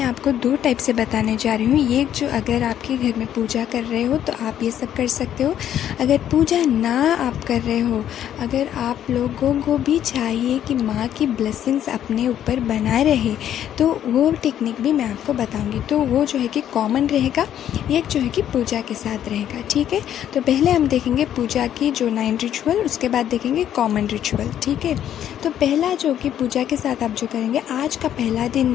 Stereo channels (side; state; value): right; quieter; 10.6 dB